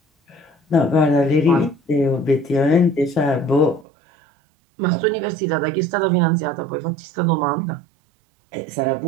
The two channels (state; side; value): drops out; left; at 3.9 s